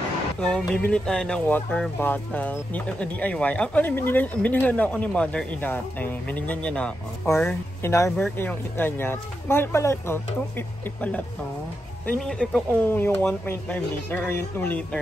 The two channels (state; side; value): normal; both; correlation 0.86